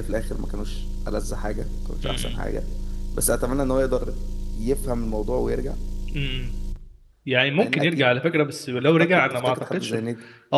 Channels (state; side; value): identical; both; correlation 1.00